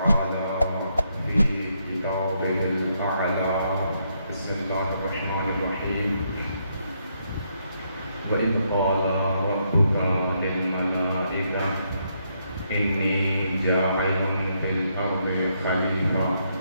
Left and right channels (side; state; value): both; inverted; correlation -0.76